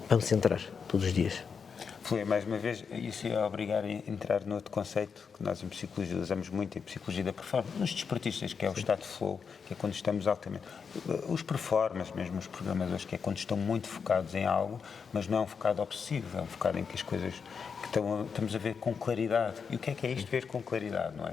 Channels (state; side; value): quieter; right; 6.0 dB